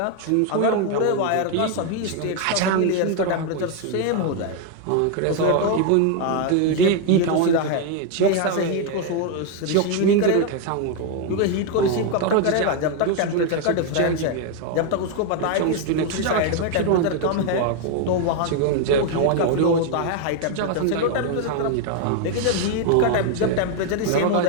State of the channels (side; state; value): both; different; correlation 0.01